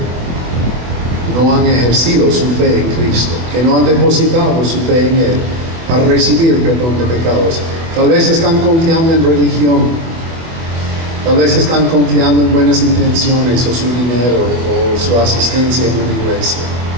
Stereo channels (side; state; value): left; late; 24 ms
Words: no han ejercido su fe en Cristo, que no han depositado su fe en Él para recibir perdón de pecados. Tal vez están confiando en religión, tal vez están confiando en buenas intenciones o su dinero o su asistencia en una iglesia.